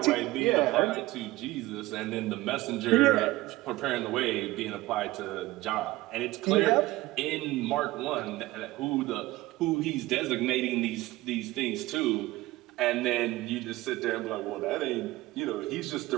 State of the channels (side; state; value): left; quieter; 18.7 dB